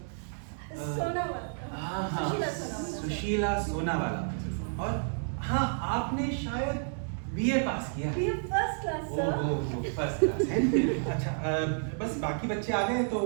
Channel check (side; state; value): left; silent; digital silence